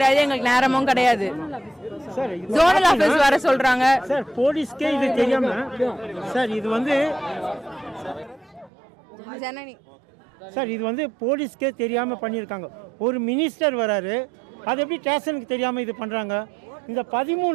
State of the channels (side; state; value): left; drops out; at 8.7 s